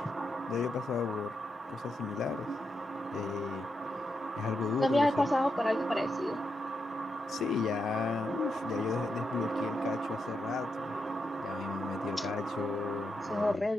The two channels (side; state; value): both; normal; correlation 0.84